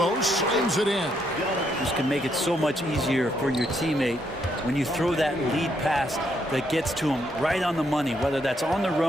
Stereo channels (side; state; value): both; normal; correlation 0.75